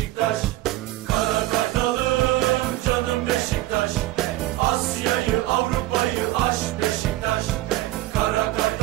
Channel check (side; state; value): left; quieter; 16.7 dB